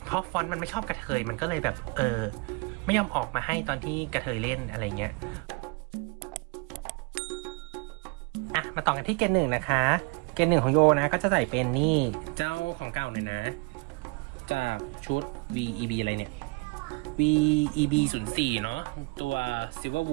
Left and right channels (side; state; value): left; quieter; 28.6 dB